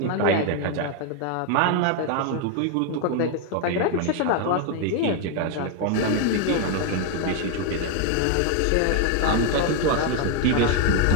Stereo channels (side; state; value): both; different; correlation 0.01